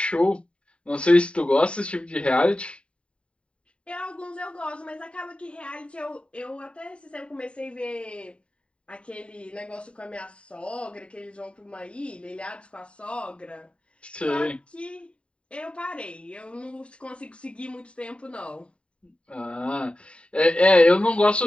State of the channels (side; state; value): right; late; 0.058 ms